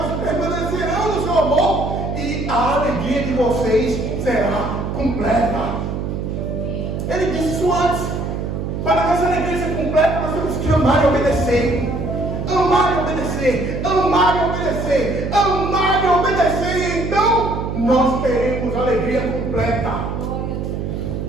permanecerão no seu amor, e a alegria de vocês será completa. Ele disse isso antes. Para nossa alegria ser completa, nós temos que amar e obedecer. Amar e obedecer. Amar e obedecer. Amar e obedecer. E então nós teremos alegria completa.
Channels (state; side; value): noise; right; hum, 4 dB below the sound